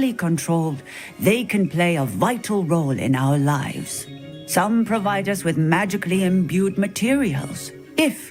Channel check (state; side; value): identical; both; correlation 1.00